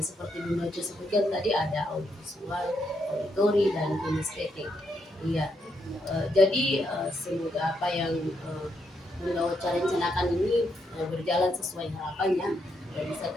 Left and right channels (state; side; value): normal; both; correlation 0.78